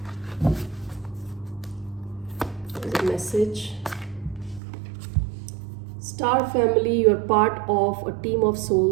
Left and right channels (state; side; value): drops out; left; at 4.6 s